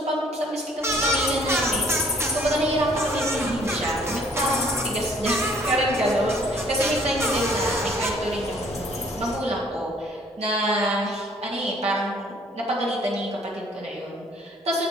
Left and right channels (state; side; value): normal; both; correlation 0.60